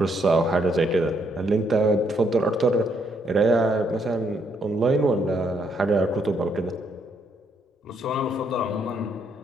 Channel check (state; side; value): normal; both; correlation 0.73